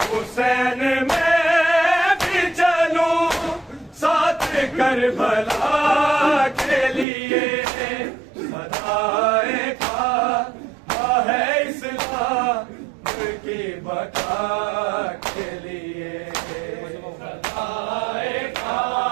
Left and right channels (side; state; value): left; drops out; at 7.1 s